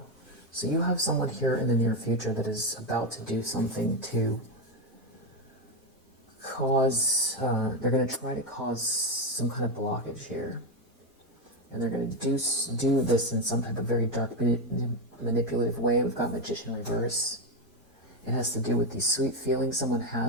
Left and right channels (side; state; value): both; normal; correlation 0.08